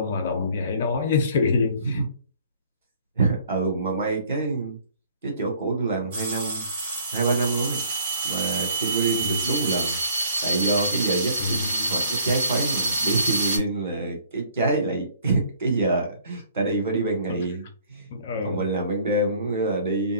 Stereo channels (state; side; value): inverted; both; correlation -0.57